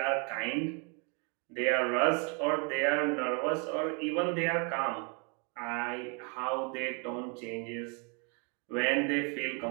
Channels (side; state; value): left; quieter; 35.7 dB